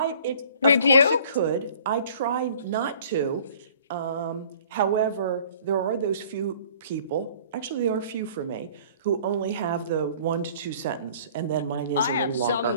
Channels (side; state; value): both; inverted; correlation -0.52